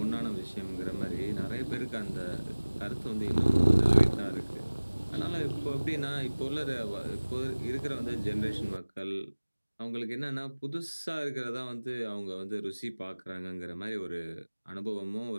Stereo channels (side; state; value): both; inverted; correlation -1.00